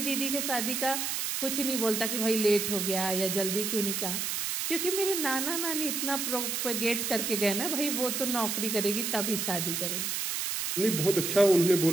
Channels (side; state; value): right; noise; hiss, 1 dB below the sound